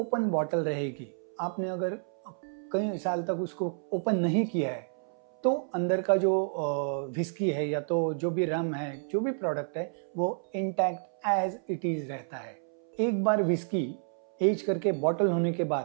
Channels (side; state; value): left; silent; 58 dB below the other